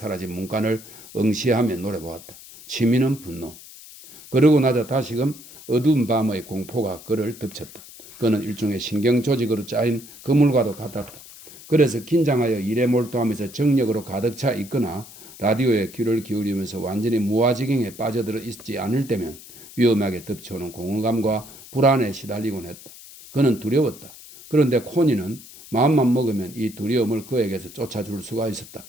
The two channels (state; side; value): noise; left; hiss, 18 dB below the sound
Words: 문간을 응시하며 노려보았다. 취미는 분노. 그러고 나자 다시금 어두운 밤의 공포가 그를 덮쳤다. 그는 일종의 신경 조직으로 짜인 그물과도 같았다. 그래서 긴장하여 일에 몰두하면서 정력으로 가득 차 있거나 라디오에 귀를 기울이면서 완전히 무아지경에 빠져들어 있지 않을 때면 위험하게 덮쳐오는 공허감과 불안에 시달리곤 했다. 그는 두려웠다. 그런데 코니는 마음만 먹으면 이 두려움을 그에게서 쫓아줄 수가 있었다.